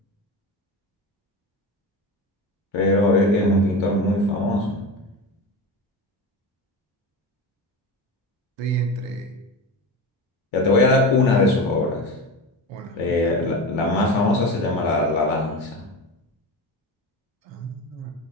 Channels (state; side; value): normal; both; correlation 0.26